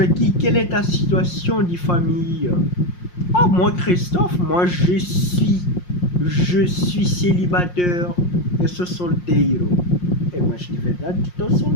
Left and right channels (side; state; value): right; late; 5.6 ms